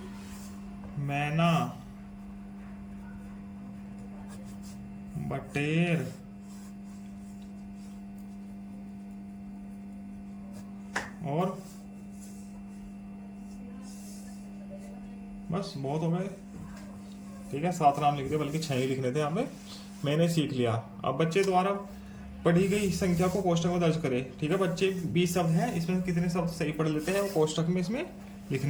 मैना। बटेर। और बस बहुत हो गए। ठीक है, 7 नाम लिख दिए, बल्कि 6 ही लिखने थे यहाँ पे। मैंने सीख लिया। अब बच्चे द्वारा पढ़ी गई संख्या को कोष्टक में दर्ज करें। ठीक है बच्चे, 20 शब्द हैं, इसमें से कितने शब्द सही पढ़ लेते हैं वो कोष्टक में इसमें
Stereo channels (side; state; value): both; identical; correlation 1.00